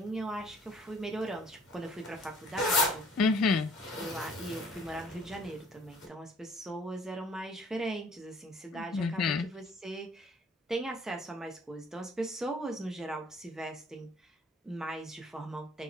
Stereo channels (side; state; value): both; normal; correlation 0.56